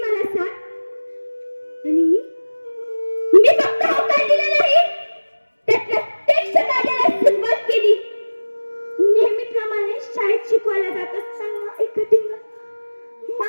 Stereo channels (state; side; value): inverted; both; correlation -1.00